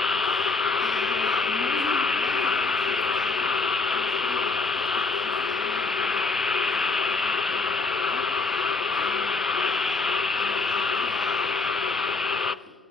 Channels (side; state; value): right; quieter; 3.8 dB